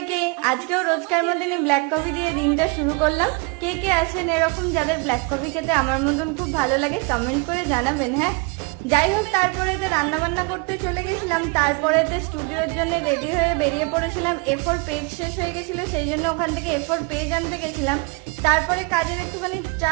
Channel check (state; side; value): quieter; left; 29.9 dB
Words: আজকেও রোজকার মতনই ব্ল্যাক কফি দিয়ে দিনটা শুরু করলাম। কে কে আছেন এরকম যাদের ব্ল্যাক কফি খেতে আমার মতন খুব ভালো লাগে, কমেন্ট করে জানাবেন। হ্যাঁ, যাই হোক, তারপরে রান্না বান্না করতে চলে গেছিলাম। তারপরে স্টুডিওর জন্য রেডি হয়ে বেরিয়ে পড়েছিলাম। A4 পেজ শেষ হয়ে গেছিল, সেই জন্য ওখান থেকে A4 পেজ আনতে গেছিলাম। তারপরে কাজের একটুখানি